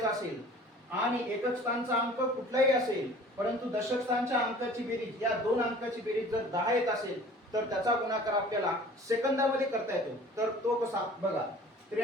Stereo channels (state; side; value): normal; both; correlation 0.47